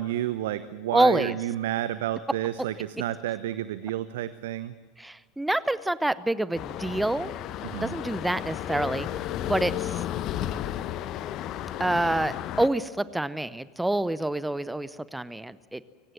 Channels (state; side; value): normal; both; correlation 0.68